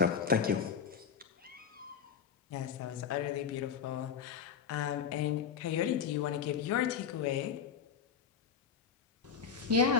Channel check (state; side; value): quieter; right; 7.0 dB